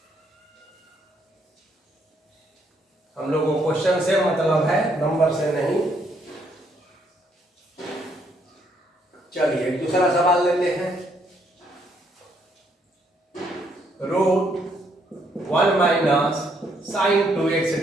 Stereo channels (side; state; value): both; normal; correlation 0.71